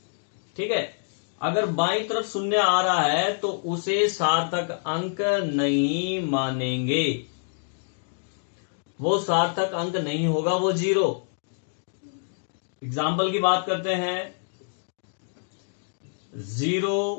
ठीक है, अगर बाईं तरफ शून्य आ रहा है तो उसे सार्थक अंक नहीं मानेंगे, वो सार्थक अंक नहीं होगा, वो जीरो। एग्जाम्पल की बात करते हैं,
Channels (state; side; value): silent; right; digital silence